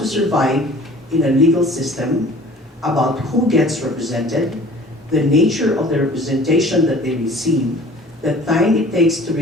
survive in a legal system, about who gets represented, the nature of the representation that they receive, the time it takes to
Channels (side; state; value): both; normal; correlation 0.48